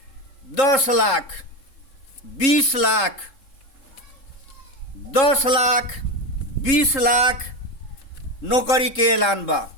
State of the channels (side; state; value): right; late; 3.7 ms